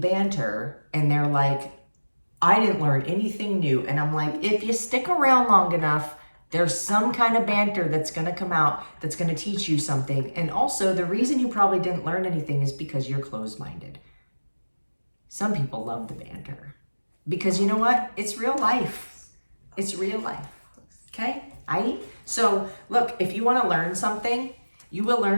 and they're like, I didn't learn anything new. And I'm like, if you stick around long enough, there's some kind of banter that's going to come out that's going to teach you something. And also, the reason you probably didn't learn anything is because you're closed-minded. Some people love the banter because, you know what? It's real life. It's real life. Okay? So, look, if you want to learn something, you will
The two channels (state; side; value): inverted; both; correlation -1.00